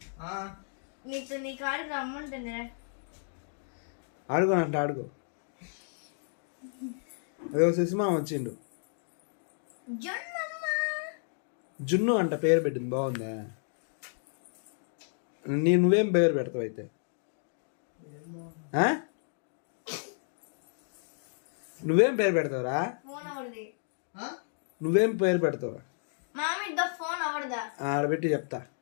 నీ కాడికి రమ్మంటుంది. ఆడుకోనంట ఆడుకో. అదే శశిమా వచ్చిండు. జున్ను అంట పేరు పెట్టింది, బాగుందా? నువ్వేం పేరు పెడతావు అయితే? నువ్వేం పేరు పెడతావురా? నువ్వేం పేరు పెడతావు? ఆడబెట్టి చెప్తా.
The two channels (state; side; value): silent; right; digital silence